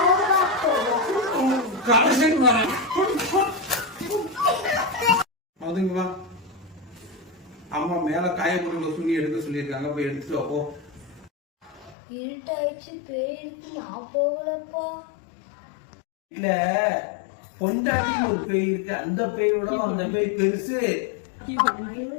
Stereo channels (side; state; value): right; drops out; at 12.0 s